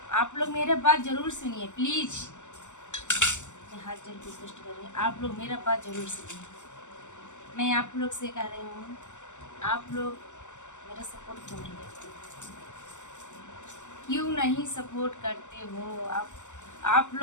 आप लोग मेरे बात ज़रूर सुनिए प्लीज़। मैं हाथ जोड़ के रिक्वेस्ट कर रही हूँ, आप लोग मेरा बात ज़रूर सुनिए। मैं आप लोग से कह रही हूँ, आप लोग मेरा सपोर्ट क्यों नहीं करते? क्यों नहीं सपोर्ट करते हो? आप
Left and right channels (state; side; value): late; right; 0.84 ms